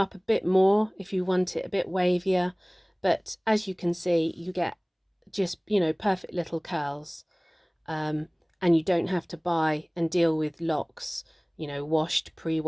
a bit more if you want it a bit wavier. But as you can see, you get just, you know, perfect little curls. And you don't have to buy and deal with locks, you know, washed,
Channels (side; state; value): both; identical; correlation 1.00